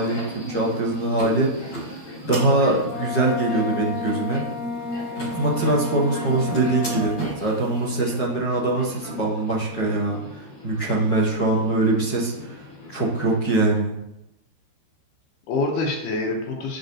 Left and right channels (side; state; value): right; late; 13 ms